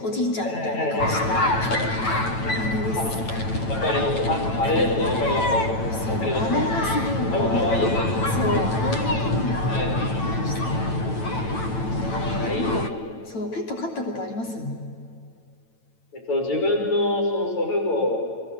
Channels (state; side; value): late; right; 9.0 ms